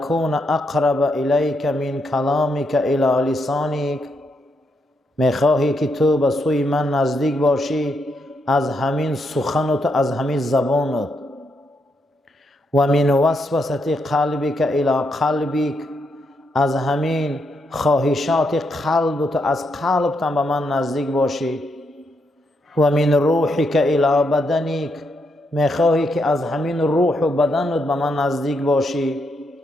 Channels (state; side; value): normal; both; correlation 0.79